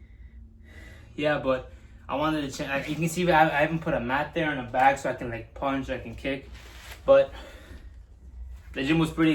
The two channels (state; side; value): identical; both; correlation 1.00